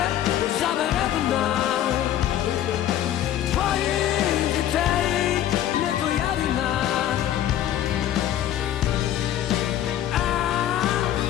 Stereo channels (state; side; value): quieter; right; 11.6 dB